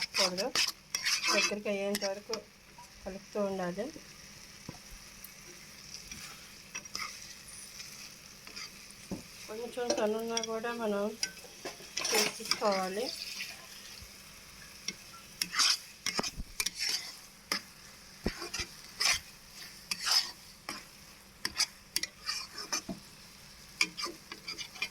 దగ్గరికి అయ్యేంత వరకు కలుపుతూ ఉండాలి. కొంచెం సన్నున్నా కూడా మనం తీసుకోవాలి.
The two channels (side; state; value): both; identical; correlation 1.00